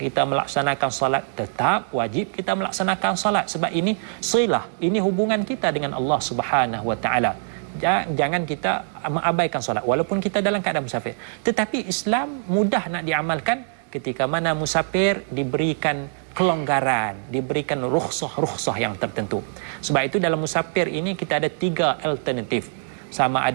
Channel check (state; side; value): silent; left; digital silence